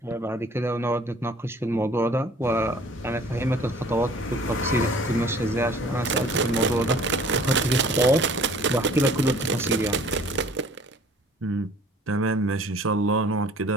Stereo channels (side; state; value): both; normal; correlation 0.51